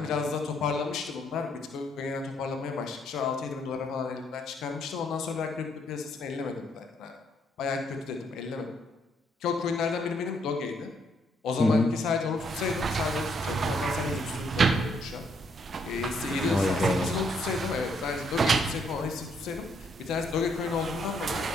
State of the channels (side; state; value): both; normal; correlation 0.71